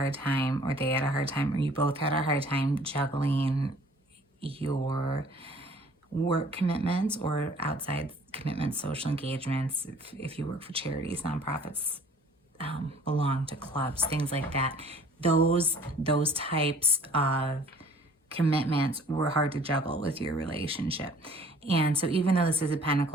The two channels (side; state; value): both; normal; correlation 0.53